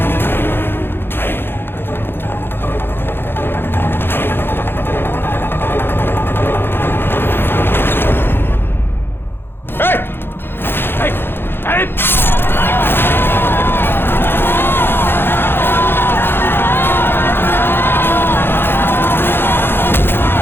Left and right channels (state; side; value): late; right; 0.10 ms